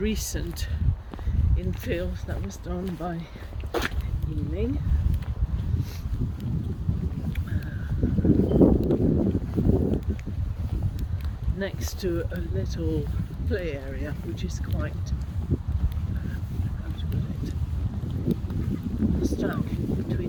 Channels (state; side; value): identical; both; correlation 1.00